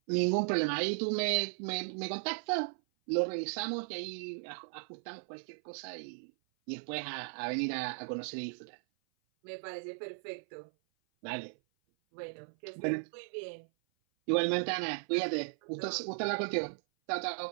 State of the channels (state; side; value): silent; left; 54 dB below the other